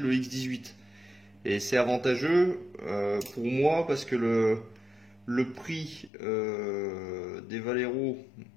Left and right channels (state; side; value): drops out; right; at 6.1 s